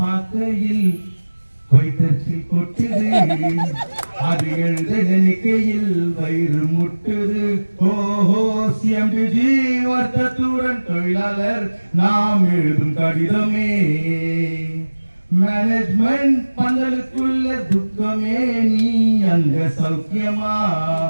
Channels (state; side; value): inverted; both; correlation -1.00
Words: வயிற்றில் கொட்டுது, அது எழுத நினைக்கையில் வயிறு முட்டுது. ஓஹோ சிஎம்டிஜி வர்த்தத்துடன் தொழிலாளர் நாம் எழுதும் கடிதமே. மேனேஜ்மெண்ட் பந்தலுக்குள்ள துக்கமே, நீ அங்க சௌக்கியமா,